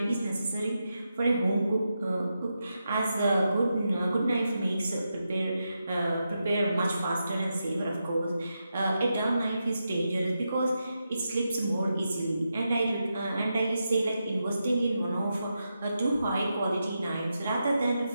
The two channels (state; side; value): inverted; both; correlation -0.87